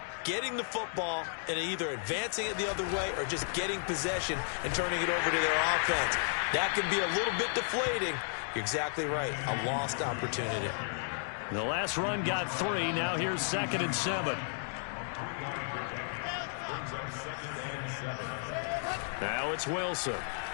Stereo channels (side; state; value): right; silent; digital silence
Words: Getting the football and either advancing it the other way or just getting possession and turning it over to their offense. That can be a little bit deflating. You're exactly right. A lost opportunity. The last run got 3. Now here's 2nd and 7. Now it's Wilson.